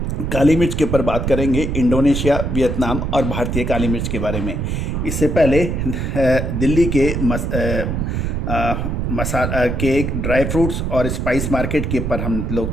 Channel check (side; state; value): right; noise; rumble, 1 dB below the sound